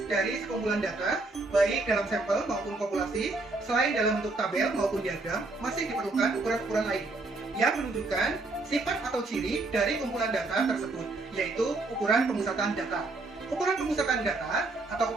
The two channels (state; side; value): quieter; left; 3.3 dB